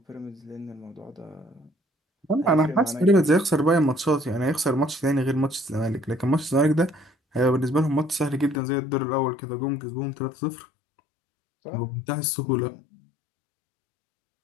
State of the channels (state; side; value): drops out; right; at 8.6 s